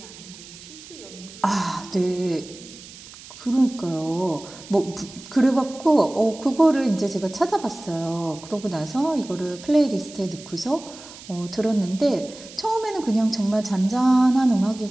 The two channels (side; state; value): right; noise; hiss, 17 dB below the sound